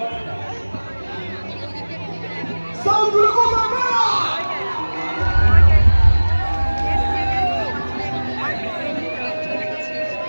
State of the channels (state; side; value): inverted; both; correlation -1.00